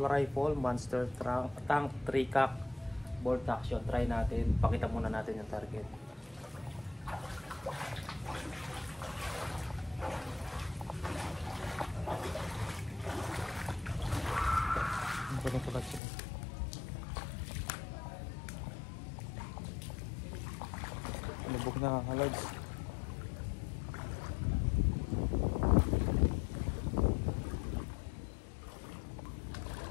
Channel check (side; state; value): right; drops out; at 16.0 s